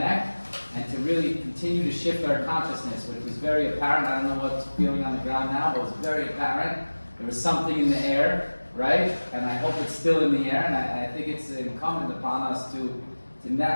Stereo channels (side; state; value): both; inverted; correlation -1.00